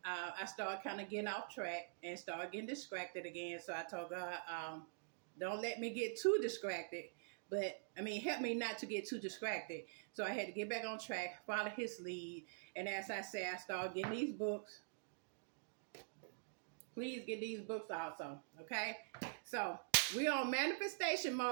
I started kind of getting off track and started getting distracted again. So I told God, don't let me get too distracted. But, I mean, help me not to get too distracted. So I had to get back on track, follow His lead. And as I said, I started getting these books. Please get these books also, okay? So we're on manifestation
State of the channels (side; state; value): left; silent; digital silence